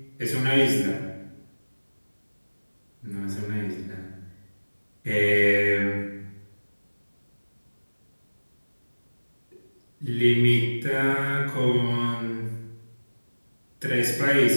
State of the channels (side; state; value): both; inverted; correlation -1.00